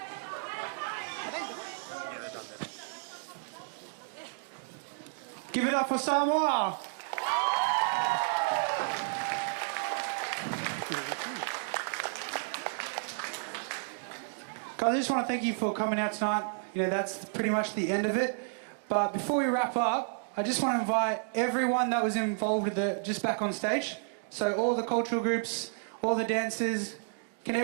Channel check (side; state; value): left; silent; digital silence